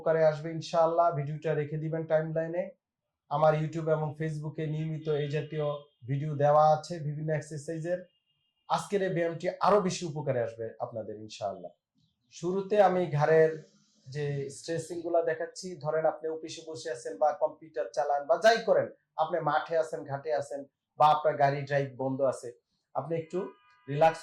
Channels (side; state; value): both; identical; correlation 1.00